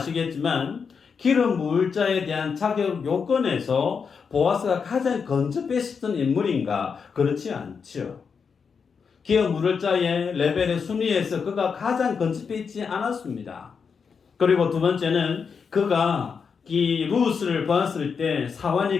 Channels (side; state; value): right; quieter; 5.9 dB